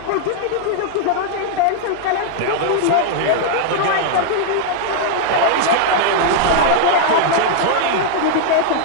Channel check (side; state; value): both; different; correlation -0.01